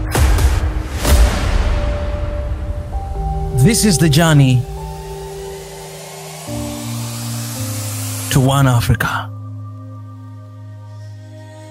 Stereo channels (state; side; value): identical; both; correlation 1.00